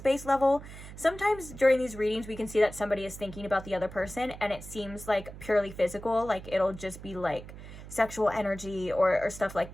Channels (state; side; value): noise; right; hum, 14 dB below the sound